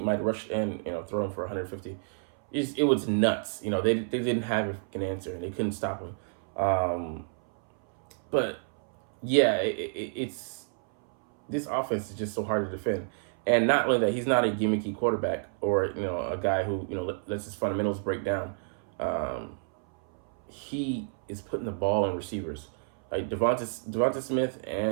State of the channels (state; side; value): silent; left; 58 dB below the other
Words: rush and, throw him for 150. It was nuts. They didn't have an answer, and they couldn't stop him. But yeah, it's this offense is just so hard to defend. And not only that, he's not a gimmicky quarterback or a guy who lets his fundamentals break down. He is putting the ball in receivers. Like Devonta Smith